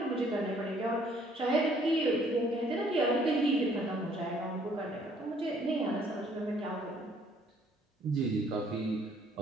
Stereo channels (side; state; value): both; normal; correlation 0.62